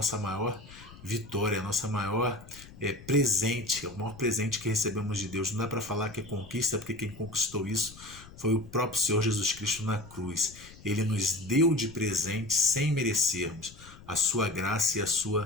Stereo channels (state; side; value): noise; left; rumble, 19 dB below the sound